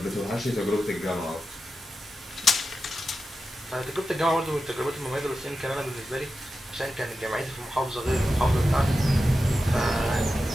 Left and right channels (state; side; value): normal; both; correlation 0.91